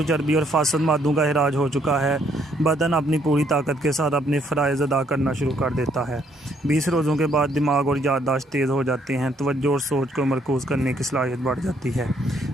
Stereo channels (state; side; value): normal; both; correlation 0.68